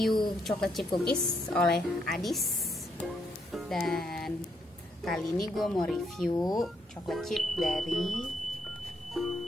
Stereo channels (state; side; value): normal; both; correlation 0.76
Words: chocolate chip cookies oleh Adis. Dan kali ini gue mau review chocolate chip dari